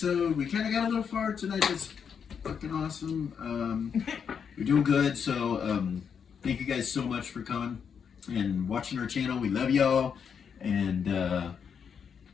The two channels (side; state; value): right; quieter; 7.0 dB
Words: We kind of got a little far tonight. That's fucking awesome. We're doing good. So thank you guys so much for coming and watching our channel. We love y'all. And